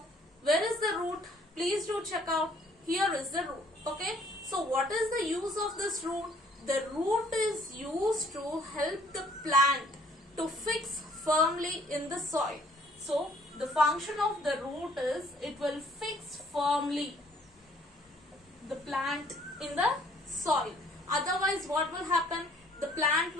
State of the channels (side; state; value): both; normal; correlation 0.60